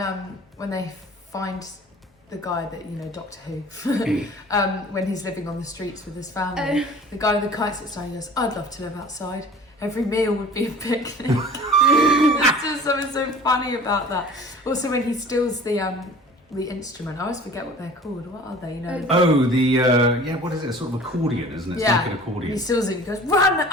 they find the guy that, Doctor Who, when he's living on the streets with his family. The guy with the kite sits down and goes, "I'd love to live outside. Every meal would be a picnic." There's just something so funny about that. Also when he steals the instrument, I always forget what they're called. What are they? What is it? Sort of accordion, isn't it? It's Yeah. like an accordion. He steals it and he goes, "Run!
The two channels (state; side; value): normal; both; correlation 0.45